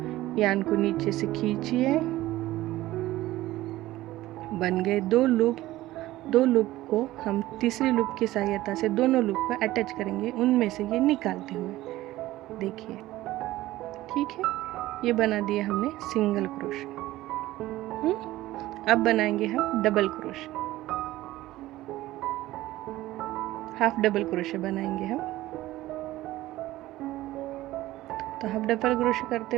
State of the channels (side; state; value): left; quieter; 16.4 dB